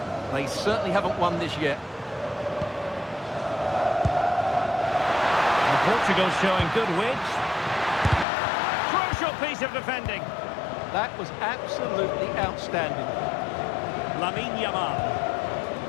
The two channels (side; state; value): right; drops out; at 8.2 s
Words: They certainly haven't won this yet. Portugal showing good width. Crucial piece of defending. That was absolutely outstanding. Lamine Yamal.